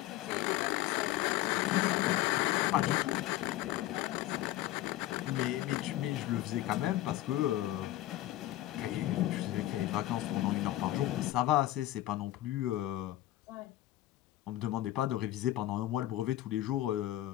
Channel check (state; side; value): quieter; right; 15.0 dB